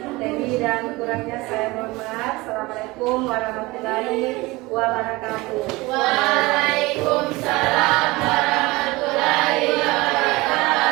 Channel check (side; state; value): left; quieter; 22.0 dB